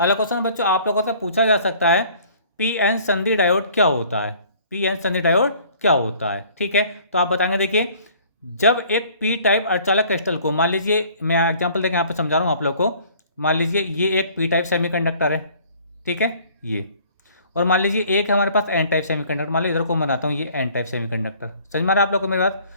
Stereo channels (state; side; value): inverted; both; correlation -0.54